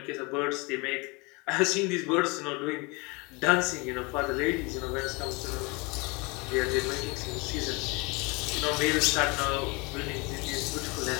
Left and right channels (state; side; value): quieter; right; 27.8 dB